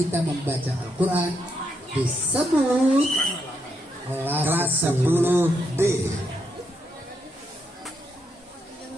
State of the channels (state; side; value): normal; both; correlation 0.80